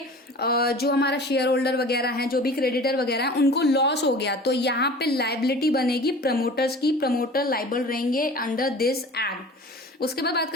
जो हमारा शेयर होल्डर वगैरह है, जो भी क्रेडिटर वगैरह है, उनको लॉस हो गया। तो यहाँ पे लाइबिलिटी बनेगी प्रमोटर्स की, प्रमोटर लाइबल रहेंगे अंडर दिस एक्ट। उसके बाद बात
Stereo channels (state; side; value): normal; both; correlation 0.41